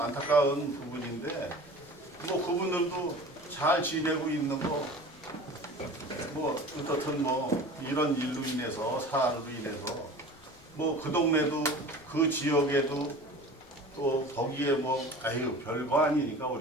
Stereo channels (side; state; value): left; noise; rumble, 26 dB below the sound